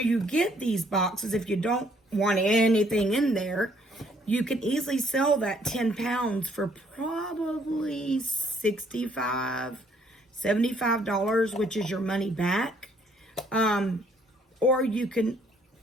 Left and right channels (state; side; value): normal; both; correlation 0.65